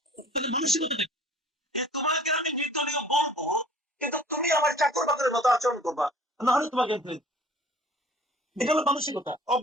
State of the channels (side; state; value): both; normal; correlation 0.49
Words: মানসিকতা, তোমাকে আমি নির্দলীয় বলবো, কিন্তু তুমি আমার চাকর বাকরের মতো আচরণ করবা। না হলে তোমাকে আমি ফেলে দিবো। এটা হলো মানসিকতা,